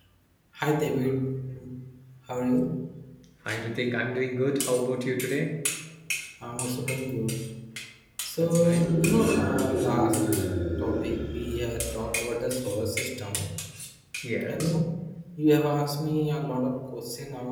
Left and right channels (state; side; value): identical; both; correlation 1.00